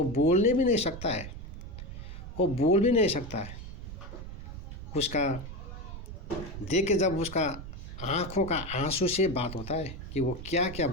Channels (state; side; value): noise; right; rumble, 10 dB below the sound